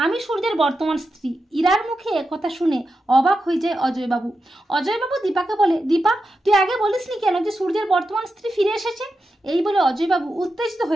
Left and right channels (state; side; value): normal; both; correlation 0.89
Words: আমি সূর্যের বর্তমান স্ত্রী। ইরার মুখে কথা শুনে অবাক হয়ে যায় অজয়বাবু। অজয়বাবু দীপাকে বলে, দীপা তুই আগে বলিসনি কেন যে সূর্যের বর্তমান স্ত্রী ফিরে এসেছে? এই বলে অজয়বাবু উত্তেজিত